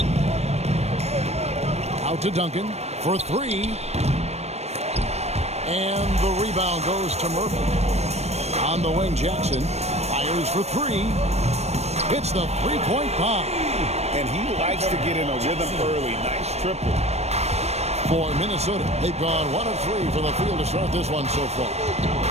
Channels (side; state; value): left; late; 0.31 ms